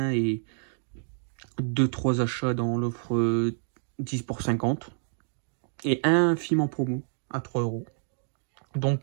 et 2-3 achats dans l'offre 10 pour 50. Et un film en promo à 3 €. Donc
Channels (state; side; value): silent; left; digital silence